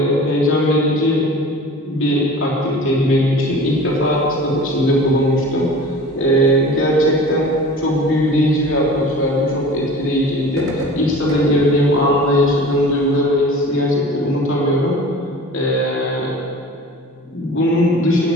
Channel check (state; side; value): normal; both; correlation 0.41